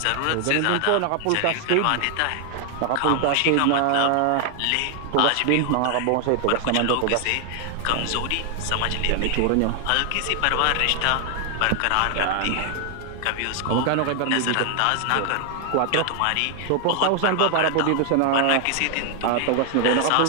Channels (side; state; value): both; different; correlation 0.00